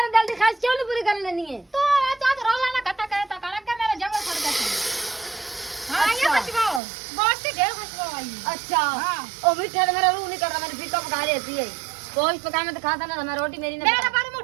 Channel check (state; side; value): drops out; left; at 6.8 s